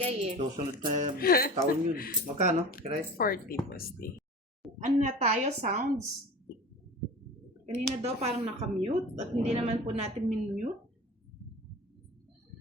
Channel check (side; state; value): both; normal; correlation 0.36